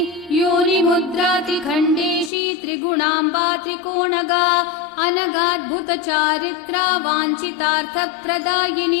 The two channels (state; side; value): drops out; right; at 2.3 s